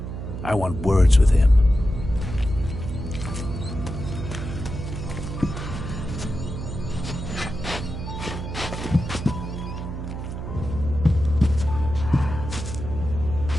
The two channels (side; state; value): right; noise; hum, 7 dB below the sound